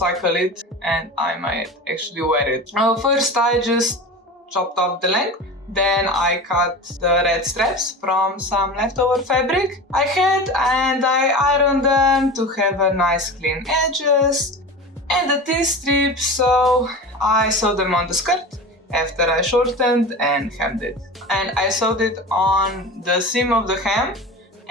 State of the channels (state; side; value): normal; both; correlation 0.31